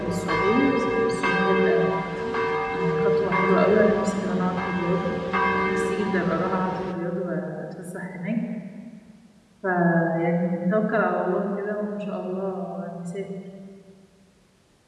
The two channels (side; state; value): both; identical; correlation 1.00